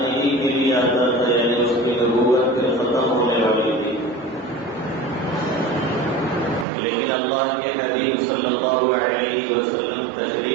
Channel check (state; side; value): drops out; left; at 6.7 s